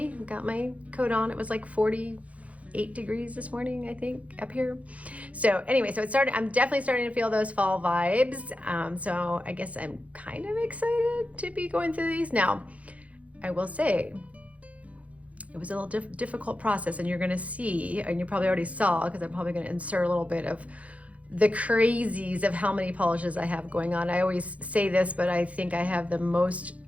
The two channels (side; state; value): left; late; 0.066 ms